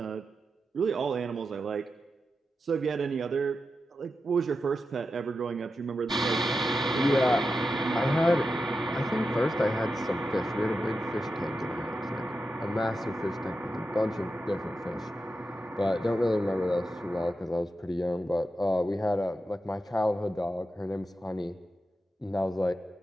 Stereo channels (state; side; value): normal; both; correlation 0.89